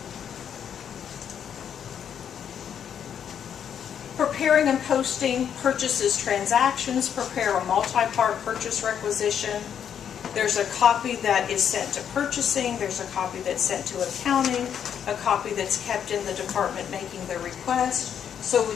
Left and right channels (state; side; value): quieter; right; 8.5 dB